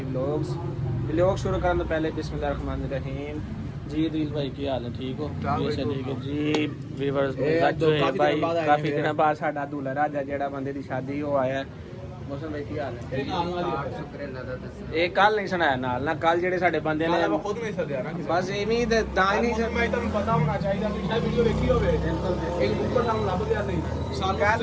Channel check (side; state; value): both; identical; correlation 1.00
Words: ਵਲੌਗਸ। ਵਲੌਗ ਸ਼ੁਰੂ ਕਰਨ ਤੋਂ ਪਹਿਲੇ ਬਿਸਮਿल्लाह रहमान रहीम। जी दिल भाई की हाल है, ठीक हो? ठीक है जी ਵੀਵਰਸ। काफी दिनों बाद साडा दूल्हा राजा जेड़ा बंदे दी शादी हो आया है। मौसम भाई की हाल है? ਸ਼ੁਕਰ ਅੱਲਾਹ ਦਾ। ਦੱਸ ਇਹ ਕੱਲ ਨਹੀਂ ਸੁਣਾਇਆ ਨਾਲ ਨਾ, ਕੱਲ ਜਿਹੜੇ ਸਾਡੇ ਬੰਦੇ ਨੇ ਮੈਂ ਖੁਦ ਨਹੀਂ ਸਦਿਆ ਨਾ ਬਸ ਐਵੇਂ ਹੀ ਤੇ ਤਾਂ ਹੀ ਨਹੀਂ ਮੈਂ ਤੁਹਾਨੂੰ ਪਤਾ ਹੋਣਾ ਚਾਹੀਦਾ ਕਿ ਸ਼ਾਇਦ ਵੀਡੀਓ ਵੇਖੀ ਹੋਵੇ। ਇੱਕ ਉੱਪਰ ਸਾਨੂੰ ਲੱਭ ਗਿਆ ਸੀ।